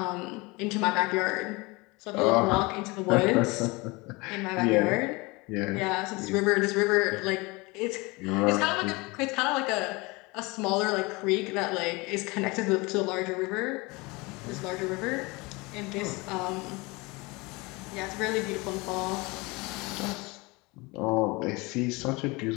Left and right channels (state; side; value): quieter; right; 25.0 dB